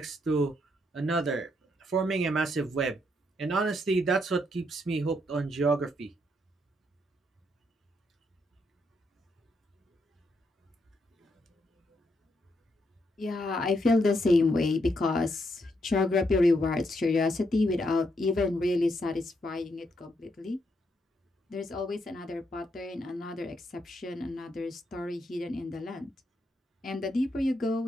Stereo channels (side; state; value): both; normal; correlation 0.77